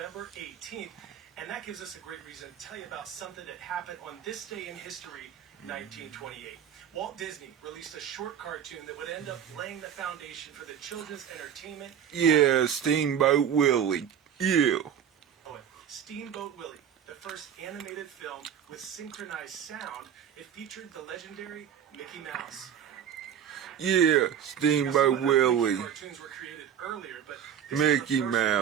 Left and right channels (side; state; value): left; quieter; 8.9 dB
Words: 18th, and that gives us a great reason to tell you about something that happened on this day in history, 1928. Walt Disney released a short cartoon that would end up laying the foundation for the children's entertainment. Yeah, Steamboat Willie. Yeah. Steamboat Willie, the first animated film with synchronized sound. It featured the legendary Mickey Mouse. Yeah, Steamboat Willie. Cartoons were created earlier, but Mickey